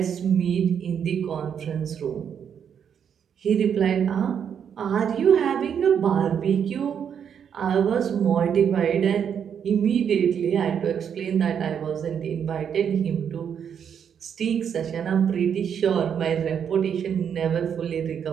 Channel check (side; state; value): left; quieter; 8.0 dB